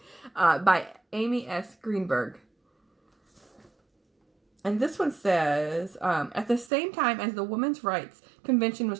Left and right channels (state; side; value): drops out; left; at 6.7 s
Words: By Amy S. Greenberg. And this one says, at the same time as the Women's Rights Convention